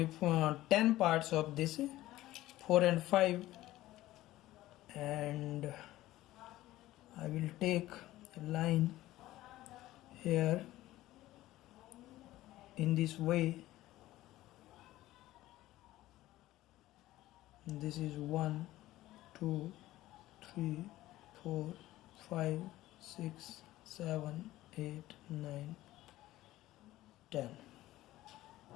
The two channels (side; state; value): right; quieter; 16.0 dB